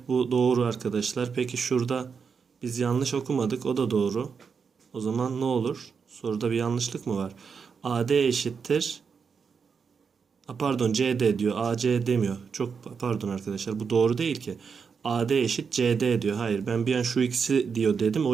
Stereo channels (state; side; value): quieter; left; 5.9 dB